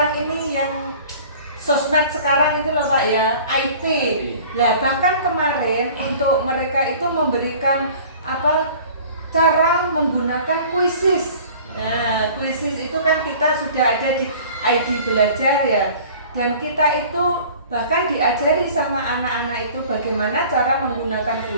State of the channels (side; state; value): both; inverted; correlation -0.46